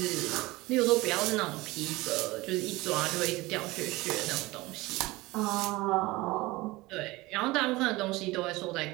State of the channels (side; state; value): left; quieter; 20.8 dB